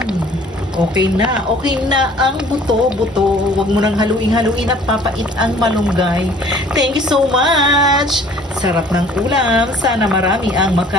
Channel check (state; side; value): normal; both; correlation 0.53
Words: Okay na ang buto-buto. Huwag mo nang haluin at papait ang malunggay. Thank you so much. Sarap ng ulam. Sana marami ang